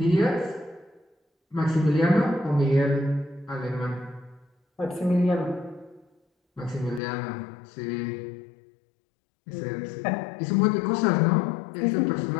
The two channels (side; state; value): right; drops out; at 7.0 s